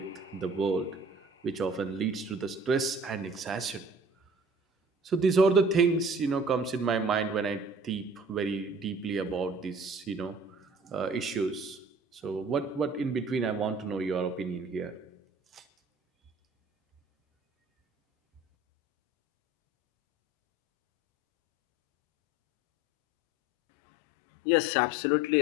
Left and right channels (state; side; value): normal; both; correlation 0.48